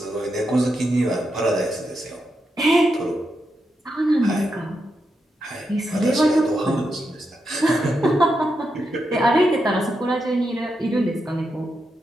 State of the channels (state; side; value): normal; both; correlation 0.85